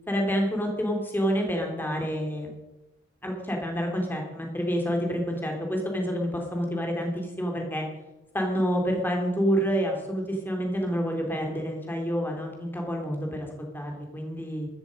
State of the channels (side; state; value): both; normal; correlation 0.77